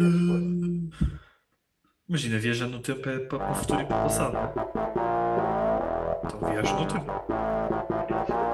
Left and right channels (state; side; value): identical; both; correlation 1.00